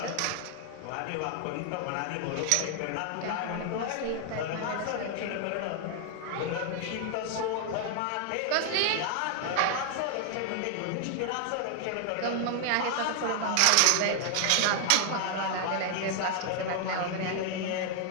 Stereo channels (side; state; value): both; different; correlation 0.00